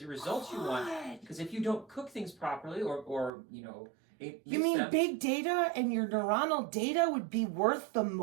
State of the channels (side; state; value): left; drops out; at 3.3 s